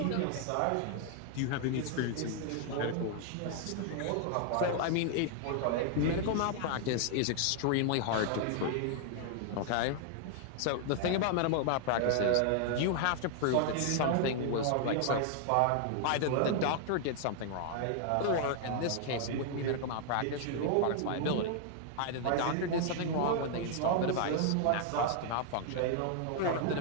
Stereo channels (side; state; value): both; different; correlation 0.00